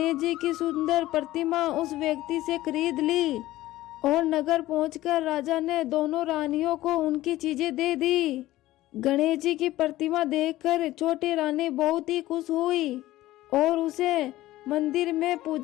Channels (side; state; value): right; quieter; 16.1 dB